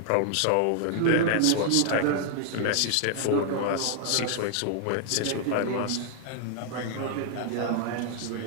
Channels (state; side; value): different; both; correlation 0.00